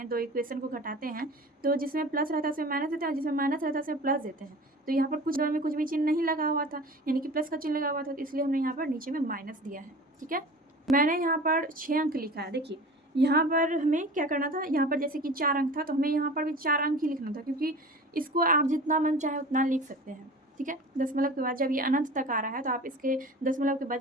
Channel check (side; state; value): both; normal; correlation 0.38